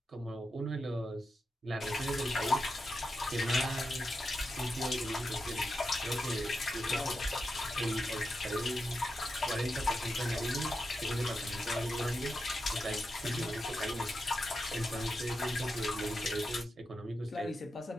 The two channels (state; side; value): normal; both; correlation 0.88